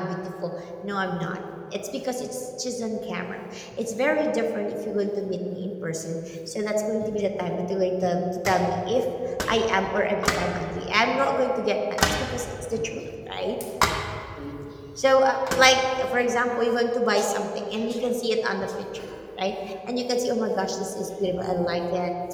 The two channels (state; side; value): identical; both; correlation 1.00